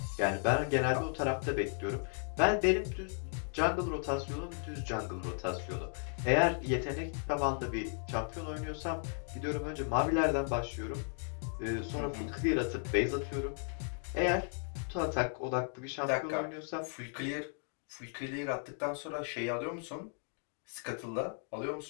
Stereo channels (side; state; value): right; silent; 54 dB below the other